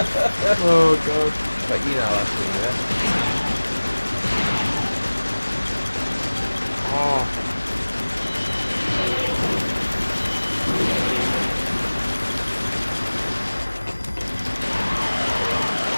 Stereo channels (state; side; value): inverted; both; correlation -1.00